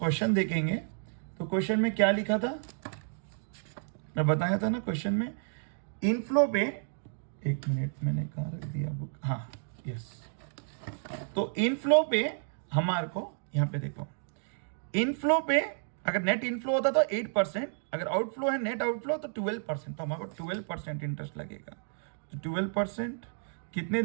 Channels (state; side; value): silent; left; digital silence